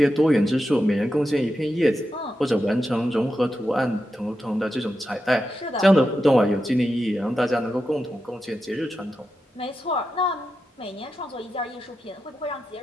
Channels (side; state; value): both; normal; correlation 0.89